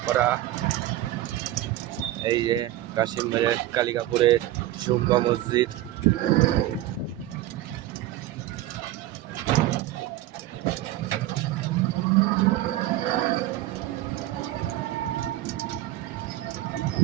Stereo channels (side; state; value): left; quieter; 14.6 dB